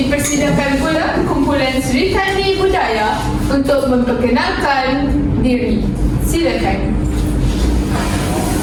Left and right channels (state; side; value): identical; both; correlation 1.00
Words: pula kumpulan Sri Kandi Budaya untuk memperkenalkan diri. Silakan.